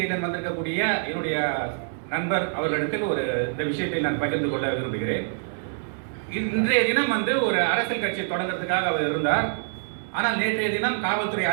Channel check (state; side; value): silent; left; digital silence